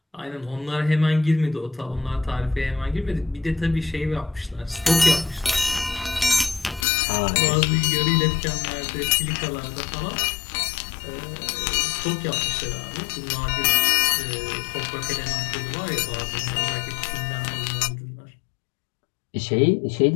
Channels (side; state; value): right; drops out; at 6.9 s